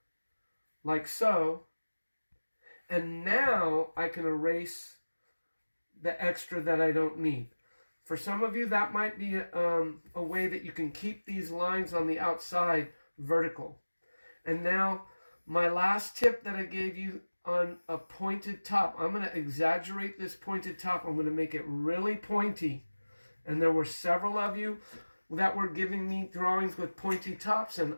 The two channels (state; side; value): inverted; both; correlation -1.00